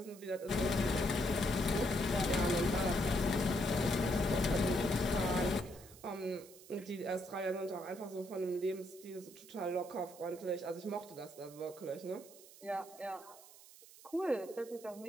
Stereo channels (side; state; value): right; noise; hiss, 20 dB below the sound